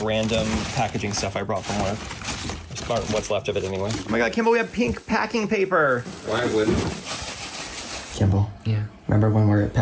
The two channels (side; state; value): both; identical; correlation 1.00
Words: random packaging stuff I brought from work. What's left of it anyway. Oh my god, Kimball, we have pink packing paper. Why wouldn't? Kimball. Yeah. Remember when we were